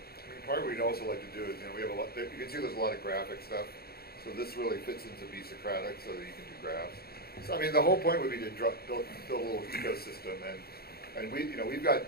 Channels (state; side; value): late; right; 0.45 ms